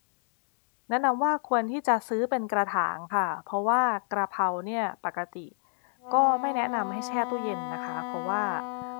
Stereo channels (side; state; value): right; silent; digital silence